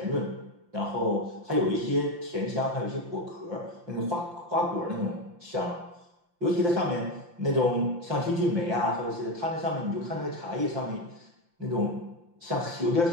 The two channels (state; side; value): late; left; 5.8 ms